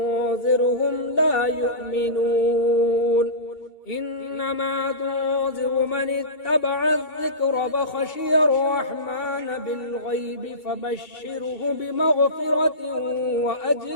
لا يؤمنون إنما تنذر من اتبع الذكر فخشي الرحمن بالغيب فبشره بمغفرة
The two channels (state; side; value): late; right; 2.2 ms